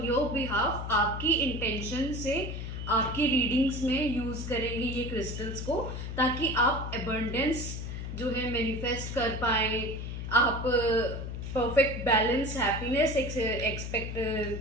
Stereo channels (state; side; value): noise; left; hum, 6 dB below the sound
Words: your behalf. आपकी इंटेंशन से आपकी रीडिंग्स में यूज करेंगे ये क्रिस्टल्स को, ताकि आप एबंडेंस जो है मैनिफेस्ट कर पाए. आप परफेक्ट बैलेंस, हैप्पीनेस एक्सपेक्ट